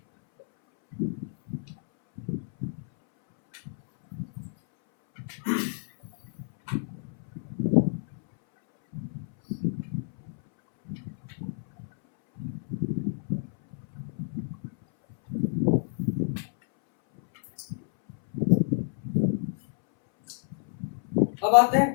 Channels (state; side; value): silent; right; 59 dB below the other